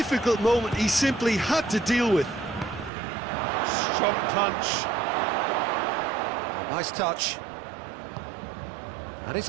moment he simply had to deal with. Strong punch. Oh, nice touch. And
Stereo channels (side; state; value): left; drops out; at 2.9 s